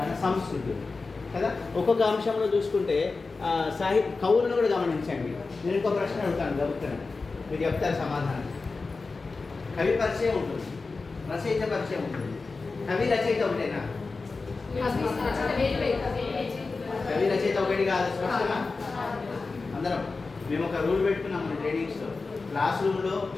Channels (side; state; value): right; quieter; 4.0 dB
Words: సంస్కృతి కదా. ఒక్కొక్క అంశంలో చూసుకుంటే కవులను కూడా గమనించండి. నేను ఇంకో ప్రశ్న అడుగుతాను, గబుతాను, మీరు చెప్తారు సమాధానం. కవి పరిచయం ఉంటుంది, రచయిత పరిచయం ఉంటుంది. కవి రచయిత ఒకటేనా? కవి రచయిత ఒకటి కాదు. స్పష్టమా? అందరం మేము ఒక రూల్ పెట్టుకున్నాం మన ట్రైనింగ్స్లో. క్లాస్ రూమ్లో